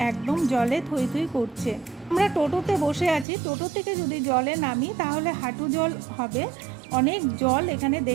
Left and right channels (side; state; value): left; drops out; at 3.2 s